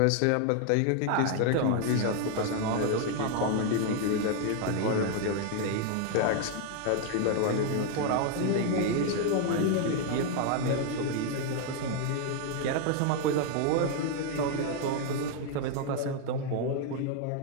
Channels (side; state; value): both; different; correlation 0.00